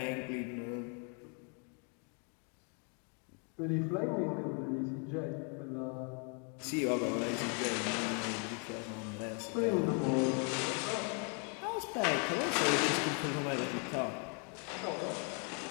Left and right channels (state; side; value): quieter; right; 39.1 dB